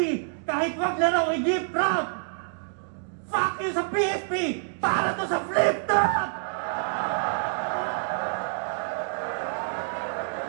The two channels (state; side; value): silent; left; digital silence